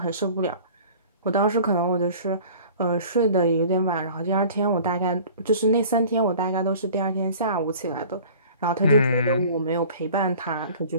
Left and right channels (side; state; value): both; inverted; correlation -0.45